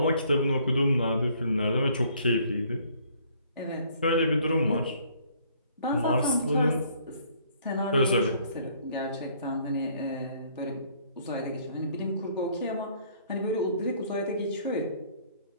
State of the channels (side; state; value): both; inverted; correlation -0.61